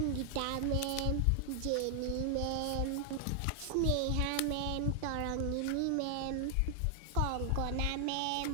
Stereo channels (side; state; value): both; different; correlation 0.00